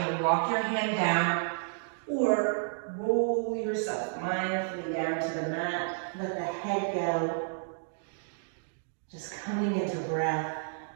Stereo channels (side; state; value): left; silent; digital silence